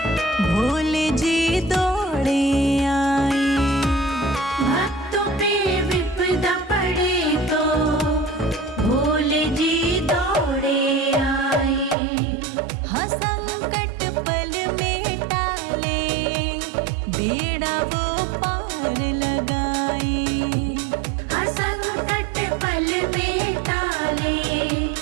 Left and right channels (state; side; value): drops out; left; at 12.0 s